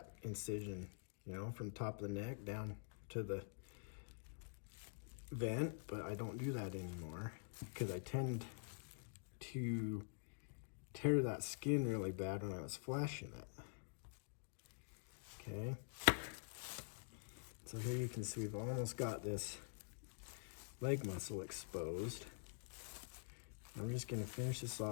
incision, you know, from top of the neck down to the vent, but I don't do that anymore because I tend to tear that skin really bad when I was flashing it. Okay, so here you can see we've almost got this leg muscle exposed. I'm just going to finish this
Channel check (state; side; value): silent; right; digital silence